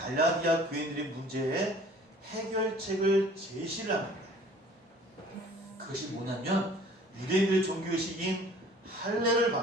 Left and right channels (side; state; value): both; normal; correlation 0.50